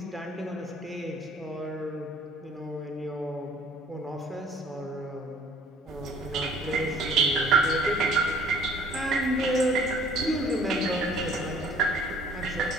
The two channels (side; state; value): both; normal; correlation 0.55